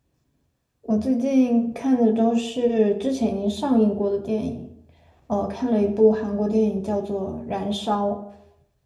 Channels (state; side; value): identical; both; correlation 1.00